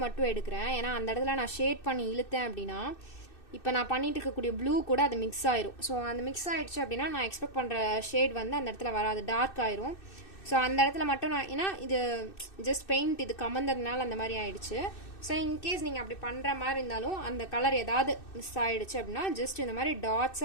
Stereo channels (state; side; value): late; right; 2.6 ms